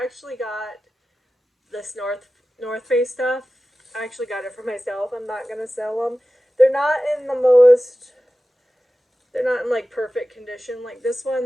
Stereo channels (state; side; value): normal; both; correlation 0.95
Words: actually got this North Face stuff. I actually got it for myself. I'm not going to sell them. They're not in like perfect condition. Like this